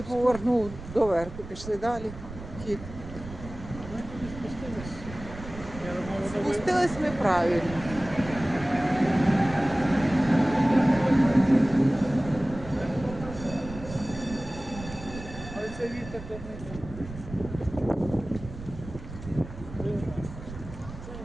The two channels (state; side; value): noise; right; rumble, 13 dB below the sound